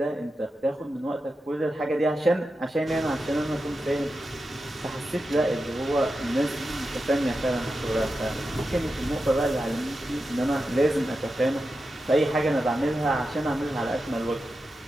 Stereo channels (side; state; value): both; normal; correlation 0.90